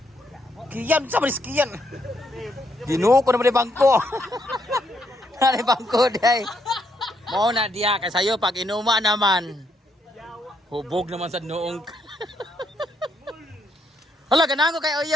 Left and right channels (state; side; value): normal; both; correlation 0.75